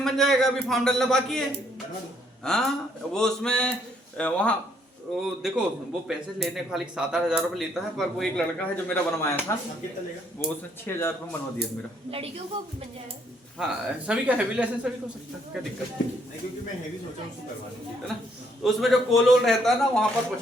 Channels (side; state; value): both; normal; correlation 0.69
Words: बन जाएगा, अभी फॉर्म डालना बाकी है। बनवा दो। हाँ वो उसमें वहाँ वो देखो वो पैसे लेने खाली 7-8 हजार रुपये लेता है, पर वो एक लड़का है जो मेरा बनवाया था अब कितना लेगा? वो उसने 6,000 रुपये बनवा दिया मेरा। लड़कियों को भी बन जाएगा। हाँ सभी का हैवी लाइसेंस सभी को सकता है, क्या दिक्कत है नहीं क्योंकि मैं हैवी सोचा हूँ उसको करवा दूँ। है ना। तो उसमें जो कोलोल रहता है ना वहाँ पर